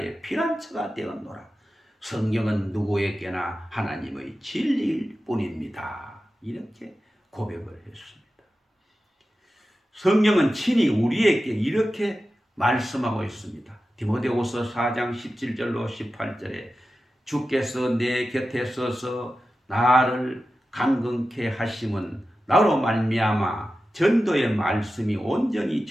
피난처가 되었노라. 성경은 누구에게나 하나님의 진리일 뿐입니다. 이렇게 고백을 했습니다. 성경은 친히 우리에게 이렇게 말씀하고 있습니다. 디모데후서 4장 17절로 18절에 주께서 내 곁에 서서 나를 강건케 하심은 나로 말미암아 전도의 말씀이 온전히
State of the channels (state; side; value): normal; both; correlation 0.93